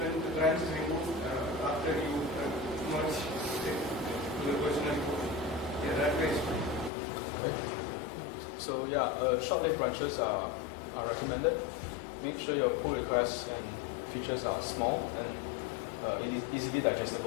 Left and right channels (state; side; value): drops out; right; at 6.9 s